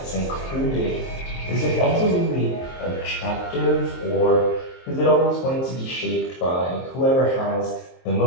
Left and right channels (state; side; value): late; right; 23 ms